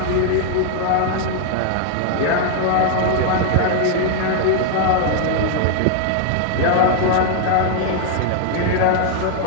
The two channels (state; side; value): different; both; correlation 0.00